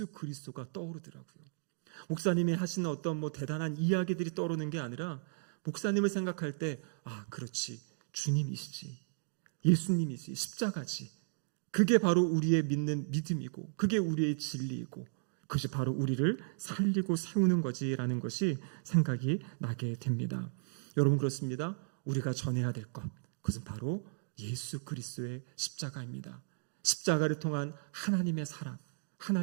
그리스도가 떠오르더라고요. 목사님이 하시는 어떤 대단한 이야기들이 떠오르는 게 아니라 목사님을 생각할 때, 아, 그렇지, 주님이시지, 예수님이지, 십자가지, 그게 바로 우리의 믿는 믿음이고 그게 우리의 진리이고 그것이 바로 우리를 살리고 세우는 거지라는 것이 생각이 나게 됩니다. 여러분, 그렇습니다. 우리가 전해야 될 것, 그것은 바로 예수 그리스도의 십자가입니다. 십자가를 통한 하나님의 사랑,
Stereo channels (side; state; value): left; silent; digital silence